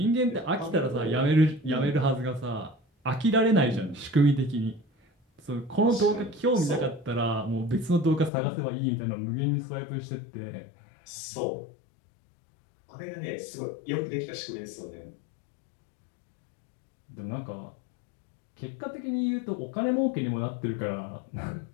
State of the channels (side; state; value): right; drops out; at 8.3 s